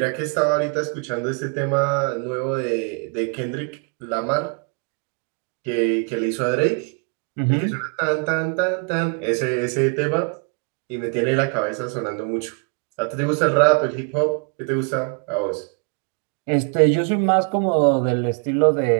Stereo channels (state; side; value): quieter; left; 37.7 dB